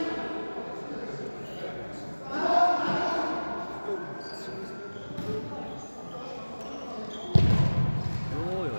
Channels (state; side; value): inverted; both; correlation -1.00